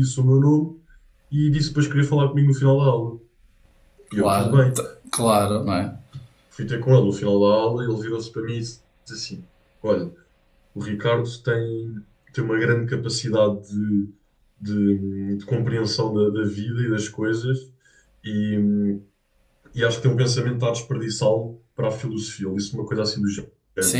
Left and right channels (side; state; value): both; identical; correlation 1.00